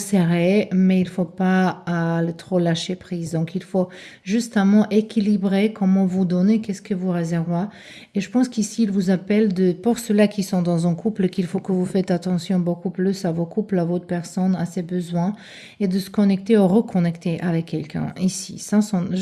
mais il ne faut pas le trop lâcher prise. Donc, il faut justement équilibrer comment vous donnez, qu'est-ce que vous réservez. Et je pense qu'ici, il vous appelle pour ceux-là qui sont dans un couple, qu'il faut que vous faites attention beaucoup plus à vos couples, à votre personne, à ses besoins, et de se connecter ou reconnecter avec quelqu'un. Ici, ça sont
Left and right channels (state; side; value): identical; both; correlation 1.00